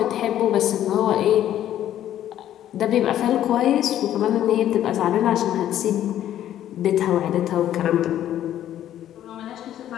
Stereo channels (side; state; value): right; quieter; 11.7 dB